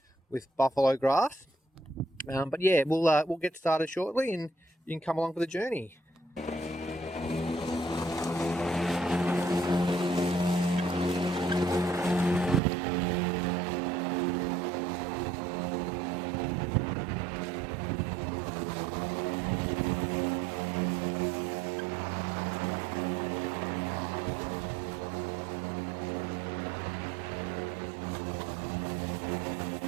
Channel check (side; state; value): left; drops out; at 12.6 s